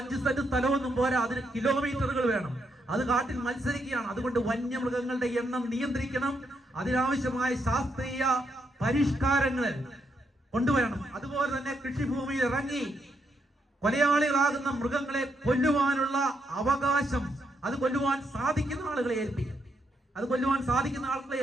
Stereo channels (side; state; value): both; normal; correlation 0.79